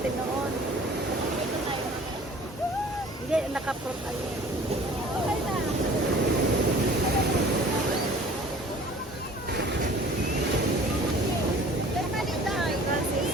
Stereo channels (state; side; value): normal; both; correlation 0.48